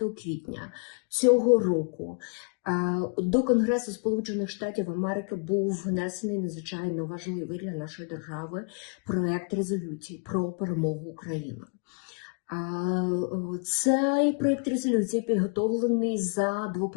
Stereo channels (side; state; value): right; quieter; 39.0 dB